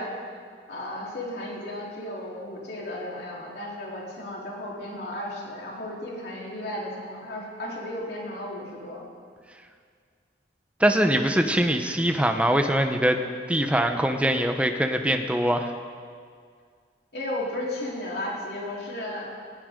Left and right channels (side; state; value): both; normal; correlation 0.68